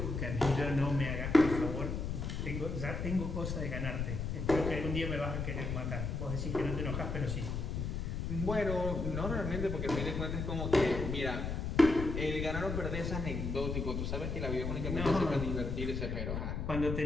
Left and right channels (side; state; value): left; noise; rumble, 3 dB below the sound